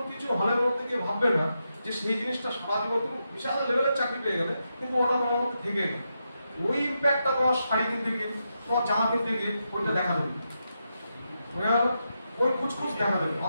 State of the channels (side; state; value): both; inverted; correlation -0.85